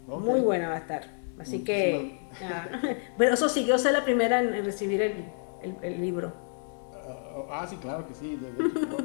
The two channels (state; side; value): silent; right; 59 dB below the other